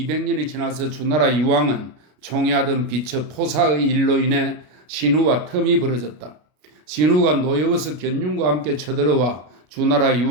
지나서 주나라 유왕은 총애하던 비처 포사의 일로 인해 신우와 텀이 벌어졌다. 신우가 노여워서 견융과 함께 쳐들어와 주나라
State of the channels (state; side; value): late; left; 33 ms